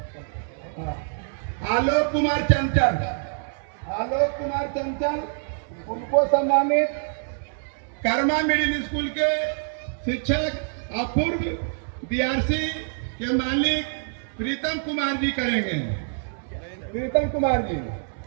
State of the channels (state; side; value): silent; left; 61 dB below the other